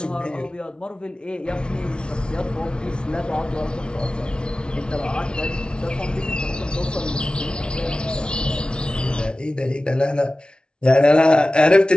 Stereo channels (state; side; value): late; right; 0.055 ms